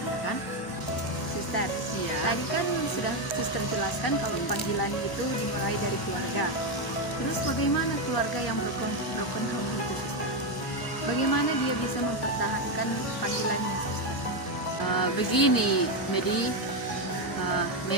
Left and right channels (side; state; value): both; normal; correlation 0.07